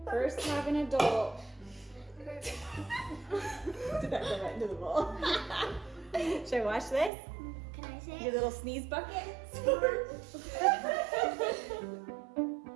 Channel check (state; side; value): drops out; left; at 7.1 s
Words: first have an adult. Did that go right into the bowl? Should I wash this? Can I say Your it? little sneeze bucket?